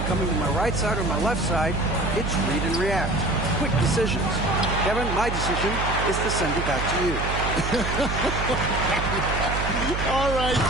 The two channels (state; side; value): noise; right; hum, 4 dB below the sound